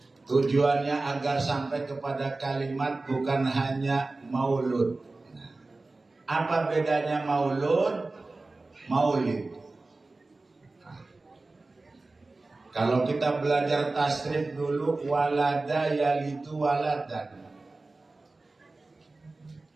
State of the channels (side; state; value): left; quieter; 3.3 dB